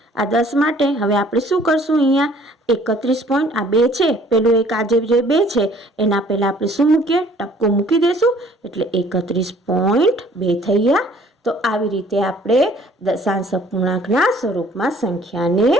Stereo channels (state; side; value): normal; both; correlation 0.56